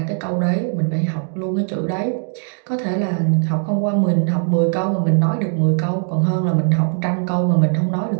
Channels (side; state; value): left; silent; 55 dB below the other